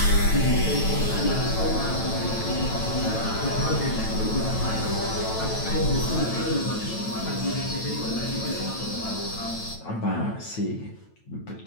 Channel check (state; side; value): late; right; 9.1 ms